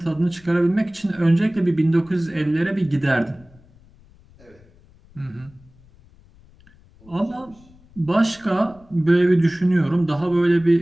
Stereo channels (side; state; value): left; noise; rumble, 27 dB below the sound